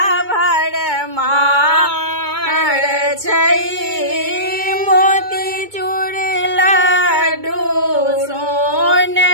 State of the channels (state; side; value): late; left; 2.2 ms